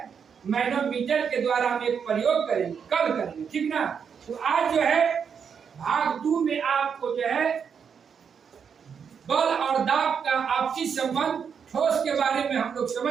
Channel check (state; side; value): quieter; left; 6.9 dB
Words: मैनोमीटर के द्वारा हम एक प्रयोग करेंगे, कल करेंगे, ठीक ना। तो आज जो है भाग 2 में आपको जो है बल और दाब का आपसी संबंध ठोस के बारे में हम लोग